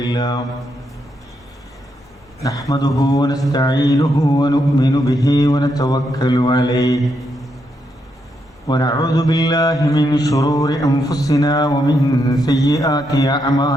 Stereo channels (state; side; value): normal; both; correlation 0.80